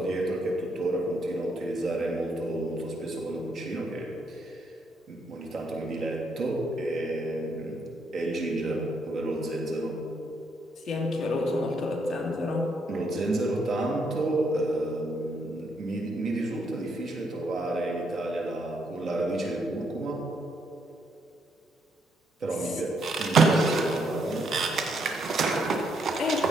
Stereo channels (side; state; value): both; normal; correlation 0.75